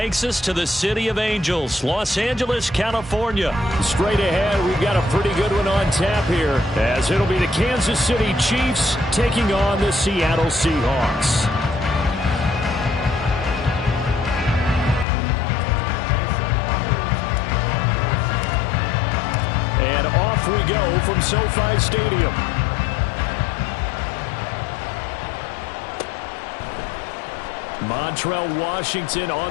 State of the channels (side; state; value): right; drops out; at 15.1 s